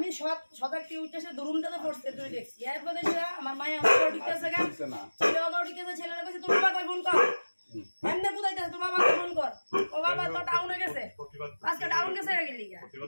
সদাক্তি উঠেছে দুরুমটাতে পড়ছে তুই দেখছি, এরপর দেখছি আমার মায়ে আমার ঢুকেছে গা, ছেলে বাবা ঢুকেছে, ছেলেরা কইছে তোর বাবা ফোন কর, এমনি বুঝাইতেছে তোর বাবাকে ফোন কর, ও বাবা তো টাউনে গেছে, আজকে টাউন গেছে গেলি গা।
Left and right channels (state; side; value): inverted; both; correlation -1.00